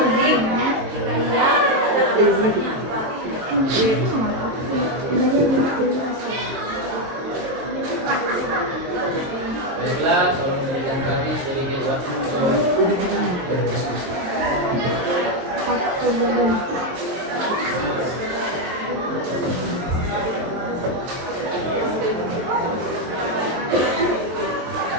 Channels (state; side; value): late; left; 22 ms